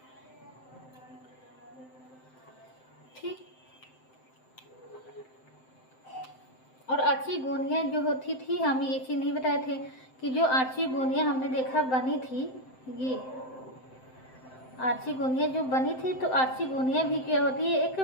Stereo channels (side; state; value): right; late; 7.7 ms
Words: ठीक। और आर्चिगोनिया जो होती थी, हम ये चीज़ नहीं बताए थे कि जो आर्चिगोनिया हमने देखा बनी थी, ये आर्चिगोनिया जो बनी थी, तो आर्चिगोनिया भी क्या होती है, एक